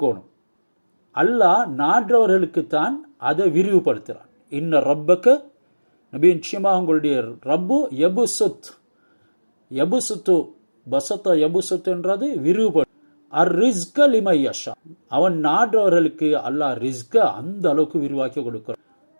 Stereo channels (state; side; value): inverted; both; correlation -1.00